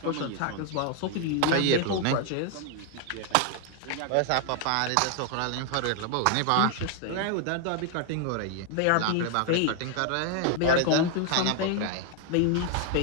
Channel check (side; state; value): both; different; correlation 0.00